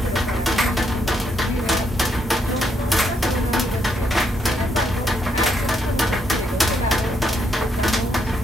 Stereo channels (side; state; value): both; normal; correlation 0.75